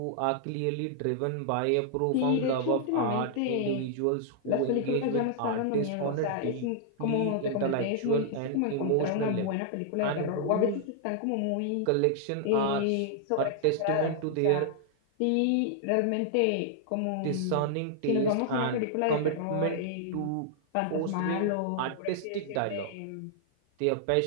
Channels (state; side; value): different; both; correlation -0.01